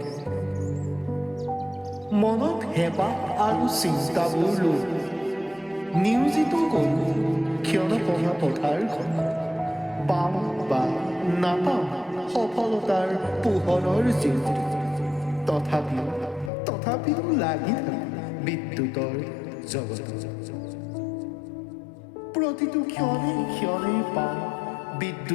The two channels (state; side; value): drops out; right; at 16.5 s